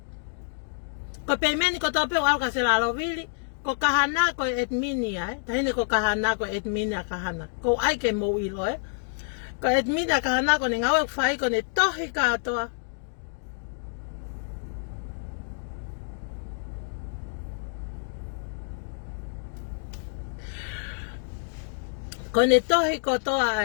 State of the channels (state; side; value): silent; right; digital silence